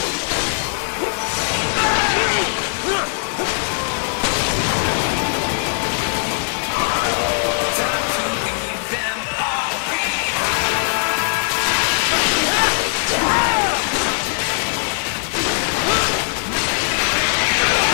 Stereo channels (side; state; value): right; silent; 56 dB below the other